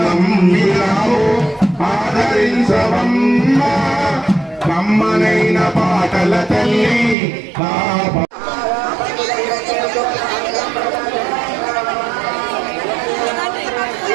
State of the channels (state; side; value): drops out; left; at 7.2 s